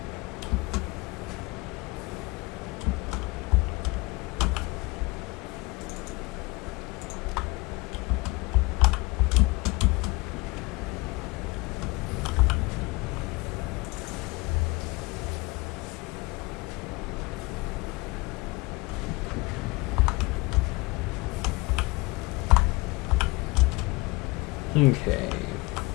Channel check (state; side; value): quieter; right; 23.8 dB